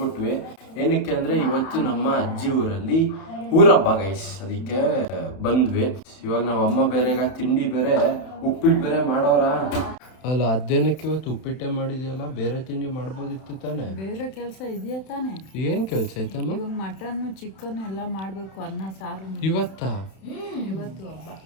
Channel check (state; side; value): late; right; 31 ms